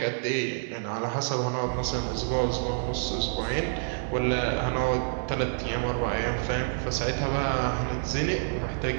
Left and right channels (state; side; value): silent; left; digital silence